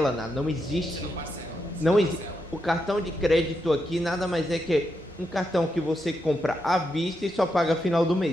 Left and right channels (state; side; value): normal; both; correlation 0.83